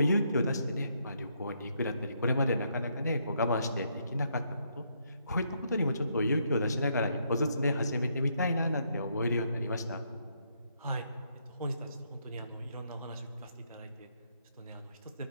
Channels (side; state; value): both; inverted; correlation -0.75